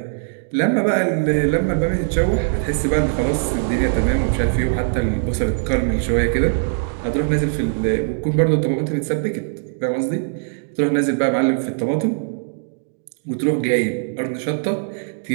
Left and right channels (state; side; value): silent; left; digital silence